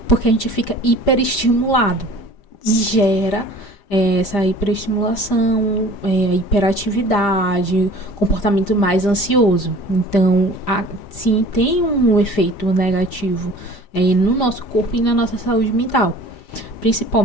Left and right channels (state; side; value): late; right; 5.0 ms